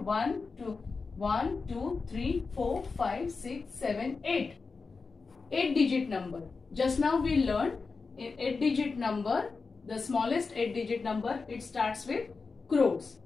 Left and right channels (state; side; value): quieter; right; 4.4 dB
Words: 1, 2, 3, 4, 5, 6, 7, 8. 8-digit number. Just now we learned in 8-digit number, the smallest 8-digit number, it starts with crores.